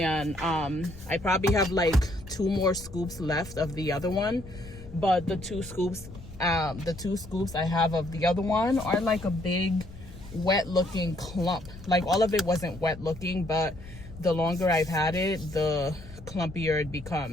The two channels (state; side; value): noise; left; rumble, 16 dB below the sound